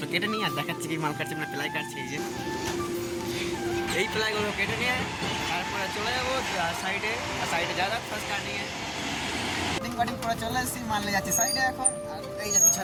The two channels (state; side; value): identical; both; correlation 1.00